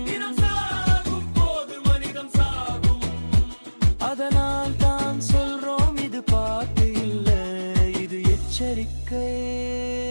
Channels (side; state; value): both; inverted; correlation -1.00